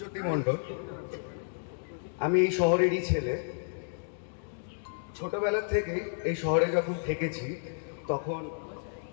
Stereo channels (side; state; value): right; silent; digital silence